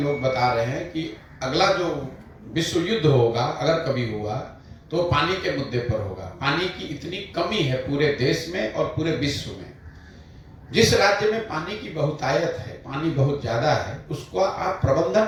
बता रहे हैं कि अगला जो विश्व युद्ध होगा, अगर कभी हुआ, तो पानी के मुद्दे पर होगा। पानी की इतनी कमी है पूरे देश में और पूरे विश्व में। जिस राज्य में पानी की बहुतायत है, पानी बहुत ज्यादा है, उसको आप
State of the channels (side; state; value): both; identical; correlation 1.00